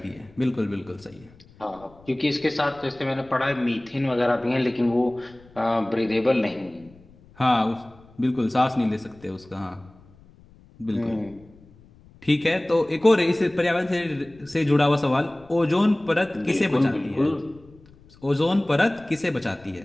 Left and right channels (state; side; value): noise; left; rumble, 26 dB below the sound